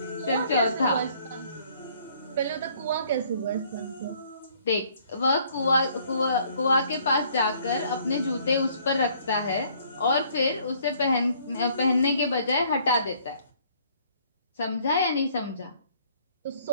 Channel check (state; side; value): inverted; both; correlation -0.62